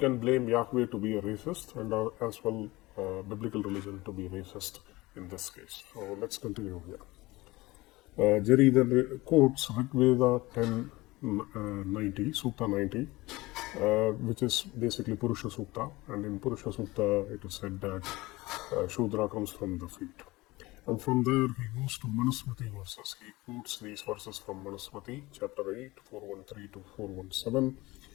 blame Yahweh to be a racist and as well biblical religion to be racist in this case. So let's continue here. Jerry then quotes Rig Veda 10:90, Sukta 90, which is basically Purusha Sukta. And in Purusha Sukta, it is said that Shudra comes from the feet. And from there, he goes to Manusmriti verses. He quotes these verses from Manusmriti, chapter 8, 413 to 417.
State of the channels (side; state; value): right; quieter; 20.6 dB